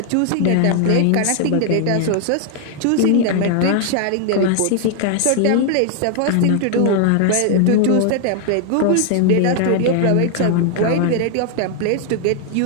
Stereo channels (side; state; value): both; different; correlation 0.00